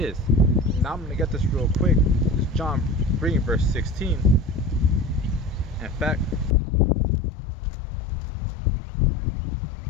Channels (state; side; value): drops out; right; at 6.6 s